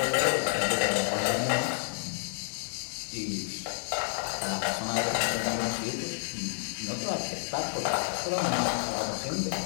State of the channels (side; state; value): right; silent; digital silence